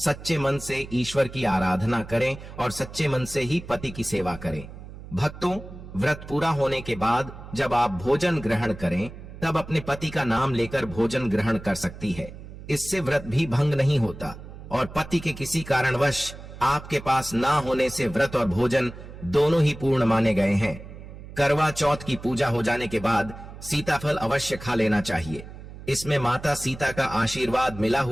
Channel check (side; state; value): right; noise; hum, 14 dB below the sound